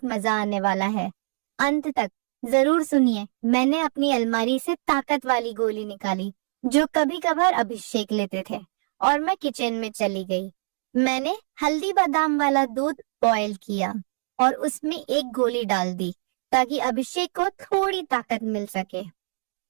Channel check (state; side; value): silent; left; 62 dB below the other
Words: मजा आने वाला है, अंत तक जरूर सुनिए। मैंने अपनी अलमारी से ताकत वाली गोली निकाली जो कभी कभार अभिषेक लेते थे और मैं किचन में चली गई। मैंने हल्दी बादाम वाला दूध बॉयल किया और उसमें एक गोली डाल दी ताकि अभिषेक को थोड़ी ताकत मिल सके।